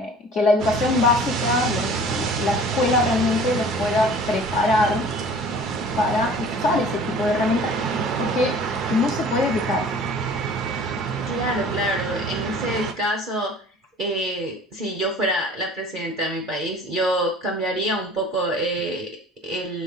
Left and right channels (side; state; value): both; normal; correlation 0.47